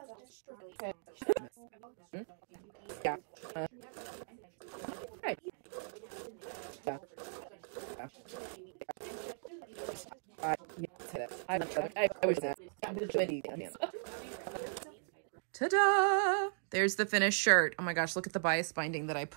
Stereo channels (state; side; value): silent; left; digital silence